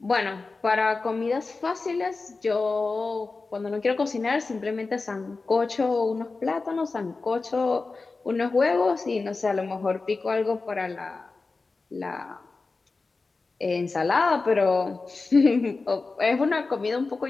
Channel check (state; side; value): quieter; right; 3.9 dB